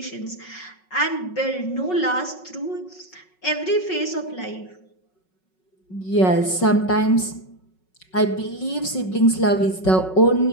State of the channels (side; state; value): right; late; 5.4 ms